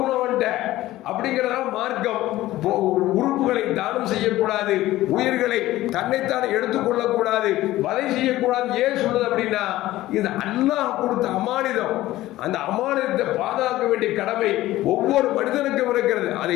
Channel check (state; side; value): quieter; right; 16.0 dB